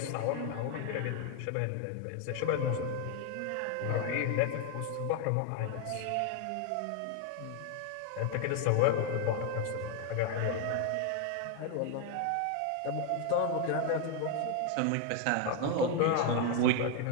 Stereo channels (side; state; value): both; different; correlation 0.01